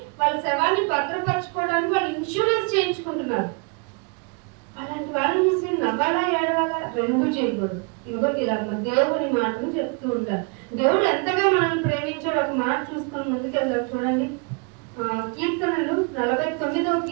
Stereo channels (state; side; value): quieter; left; 33.0 dB